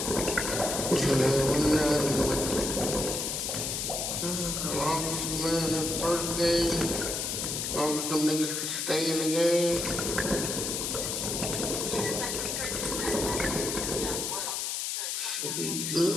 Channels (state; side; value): noise; left; hiss, 2 dB below the sound